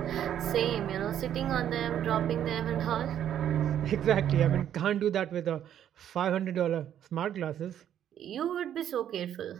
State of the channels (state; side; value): quieter; left; 10.3 dB